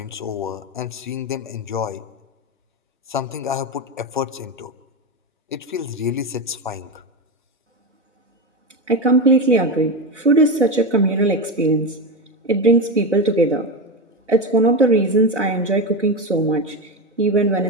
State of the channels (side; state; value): both; normal; correlation 0.16